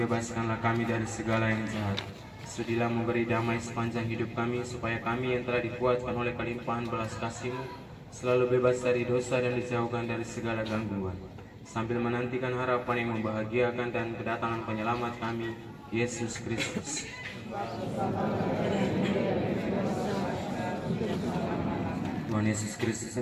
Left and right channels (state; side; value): identical; both; correlation 1.00